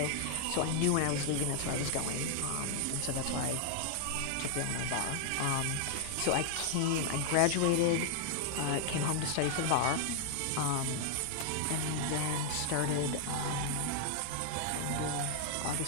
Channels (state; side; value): different; both; correlation 0.00